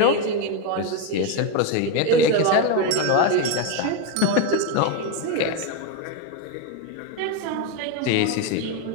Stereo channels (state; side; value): different; both; correlation 0.03